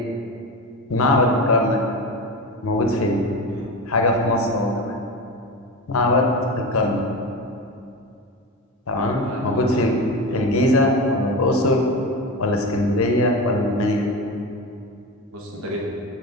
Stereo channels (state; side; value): normal; both; correlation 0.24